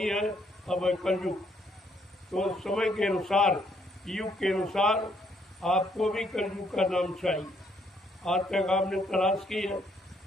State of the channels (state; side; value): normal; both; correlation 0.70